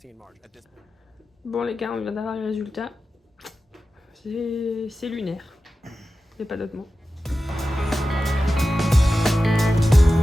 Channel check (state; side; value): normal; both; correlation 0.93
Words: margin. Bon les gars, on vient d'avoir les résultats. C'est lunaire. Il n'y a pas d'autre mot.